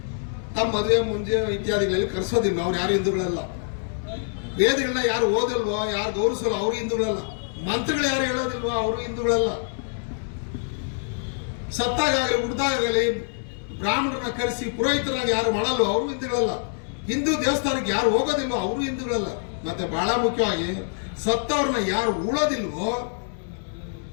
ತಮ್ಮ ಮದುವೆ ಮುಂಜೆ ಇತ್ಯಾದಿಗಳಲ್ಲಿ ಕರೆಸೋದಿಲ್ಲ, ಅವ್ರು ಯಾರು ಹಿಂದೂಗಳಲ್ಲ. ವೇದಗಳನ್ನ ಯಾರು ಓದಲ್ವೋ, ಯಾರು ಗೌರವಿಸಲ್ಲ, ಅವರು ಹಿಂದೂಗಳಲ್ಲ. ಮಂತ್ರಗಳು ಯಾರು ಹೇಳೋದಿಲ್ವೋ, ಅವರು ಹಿಂದೂಗಳಲ್ಲ. ಸತ್ತಾಗಲಿ ಹುಡ್ದಾಗಲಿ ಬ್ರಾಹ್ಮಣರನ್ನ ಕರೆಸಿ ಪುರೋಹಿತರಾಗಿ ಯಾರು ಮಾಡಲ್ವೋ, ಅವರು ಹಿಂದೂಗಳಲ್ಲ. ಹಿಂದೂ ದೇವಸ್ಥಾನಕ್ಕೆ ಯಾರು ಹೋಗೋದಿಲ್ವೋ, ಅವರು ಹಿಂದೂಗಳಲ್ಲ. ಮತ್ತೆ ಬಹಳ ಮುಖ್ಯವಾಗಿ ಸತ್ತವ್ರನ್ನ ಯಾರು ಉಳೋದಿಲ್ವೋ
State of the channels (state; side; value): silent; right; 62 dB below the other